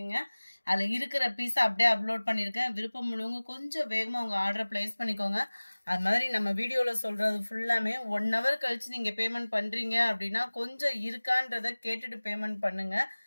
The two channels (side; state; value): both; inverted; correlation -1.00